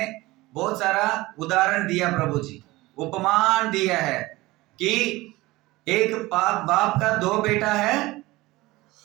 बहुत सारा उदाहरण दिया प्रभु जी, उपमान दिया है कि एक बाप का दो बेटा है,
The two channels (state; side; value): quieter; left; 19.8 dB